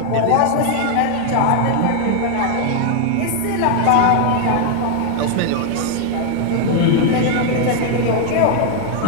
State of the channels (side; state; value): both; different; correlation 0.00